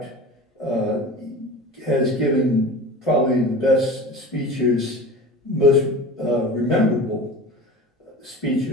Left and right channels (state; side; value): normal; both; correlation 0.35